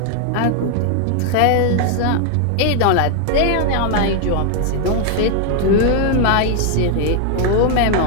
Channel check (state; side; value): different; both; correlation 0.00